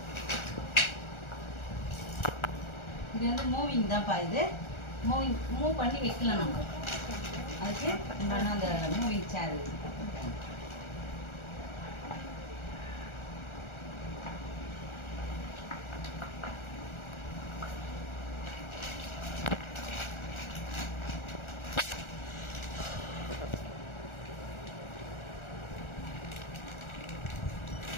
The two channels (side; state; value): right; late; 1.4 ms